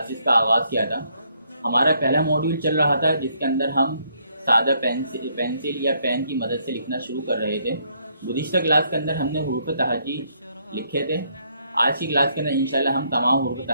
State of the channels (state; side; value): inverted; both; correlation -0.71